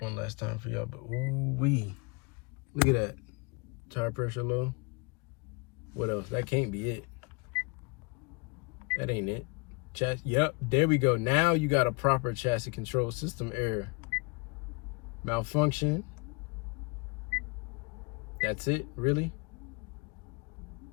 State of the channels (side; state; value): right; quieter; 29.9 dB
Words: last time for y'all, but ooh-wee. Look at that. Tire pressure low. What else? That can't be it. That ain't it. Yep, there we go. Now you got a proper chassis control system error. Malfunction. That's it, really?